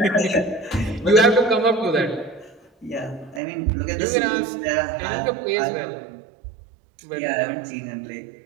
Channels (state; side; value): drops out; left; at 3.4 s